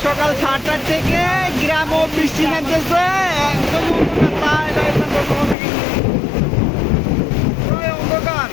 সকাল 7টার থেকে গ্রামও বৃষ্টি নামতেছে একদম অন্ধকার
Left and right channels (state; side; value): drops out; right; at 5.6 s